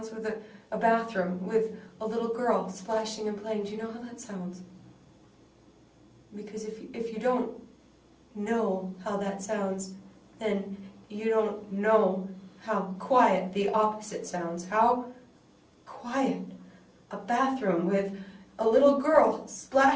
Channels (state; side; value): identical; both; correlation 1.00